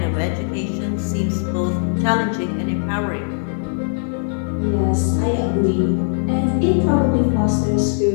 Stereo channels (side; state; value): right; silent; digital silence